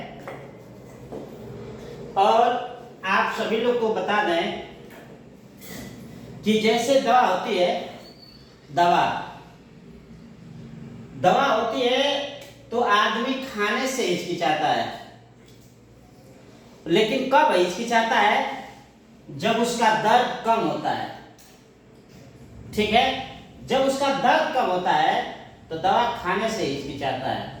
और आप सभी लोग को बता दें कि जैसे दवा होती है, दवा दवा होती है तो आदमी खाने से हिचकिचाता है, लेकिन कब हिचकिचाता है? जब उसका दर्द कम होता है। ठीक है, जब उसका दर्द कम होता है तो दवा खाने से हिचकिचाता है,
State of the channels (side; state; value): both; identical; correlation 1.00